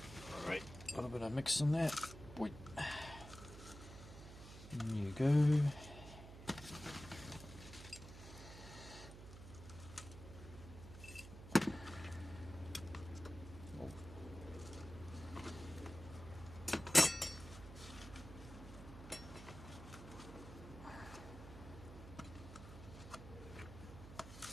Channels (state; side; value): noise; right; hum, 13 dB below the sound